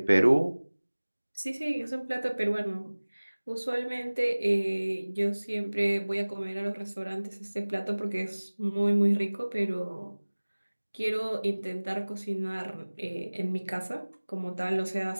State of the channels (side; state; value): both; inverted; correlation -1.00